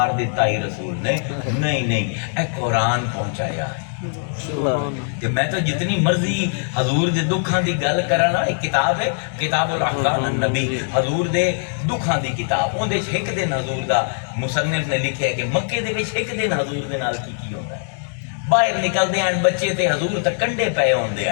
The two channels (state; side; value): silent; right; digital silence